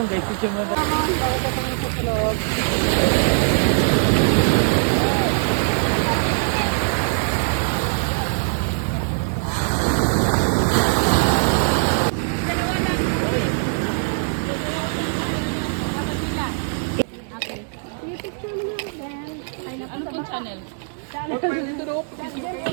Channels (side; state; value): left; silent; digital silence